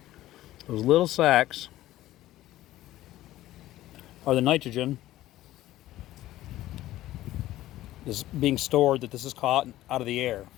Those little sacks are the nitrogen is being stored that this is caught out of the air.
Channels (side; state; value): right; quieter; 15.0 dB